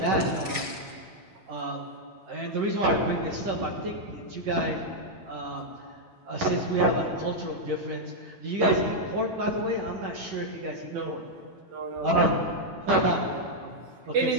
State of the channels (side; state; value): left; late; 8.9 ms